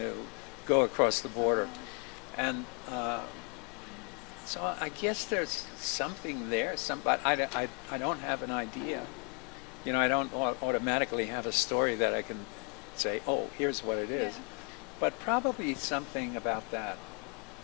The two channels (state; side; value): quieter; right; 35.2 dB